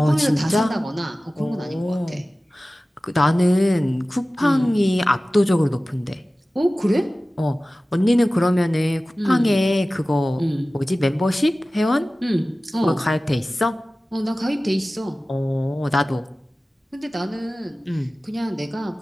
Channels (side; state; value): both; normal; correlation 0.97